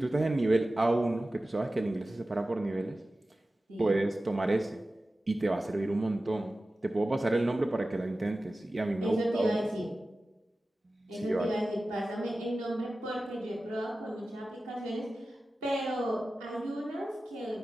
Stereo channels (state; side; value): normal; both; correlation 0.95